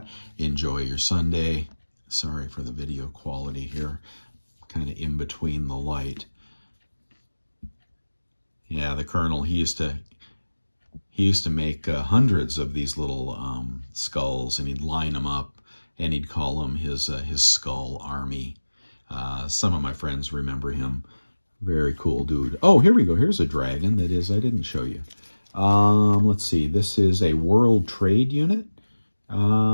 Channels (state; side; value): inverted; both; correlation -1.00